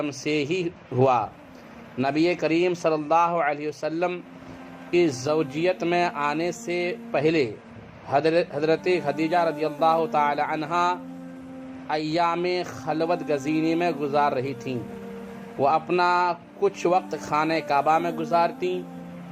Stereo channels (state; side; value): identical; both; correlation 1.00